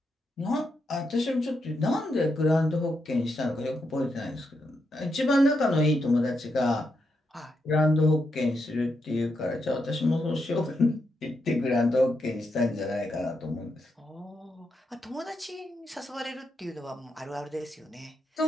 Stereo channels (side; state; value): both; normal; correlation 0.82